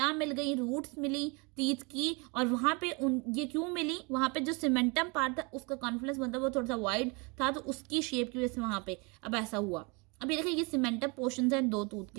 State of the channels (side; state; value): left; quieter; 30.1 dB